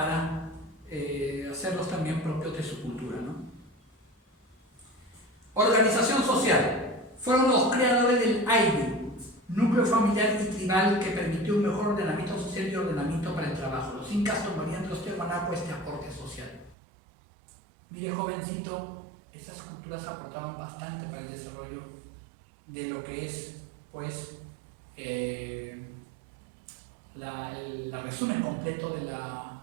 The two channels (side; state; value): left; drops out; at 16.8 s